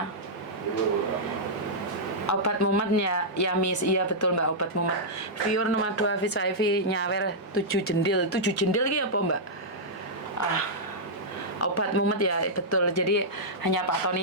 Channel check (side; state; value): both; normal; correlation -0.10